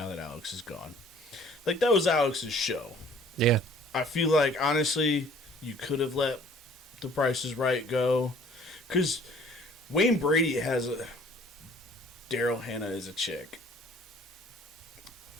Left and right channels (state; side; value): normal; both; correlation 0.55